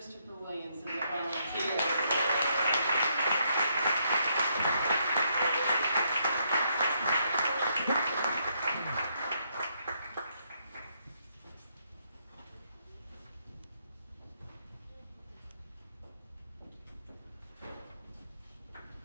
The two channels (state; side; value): inverted; both; correlation -0.75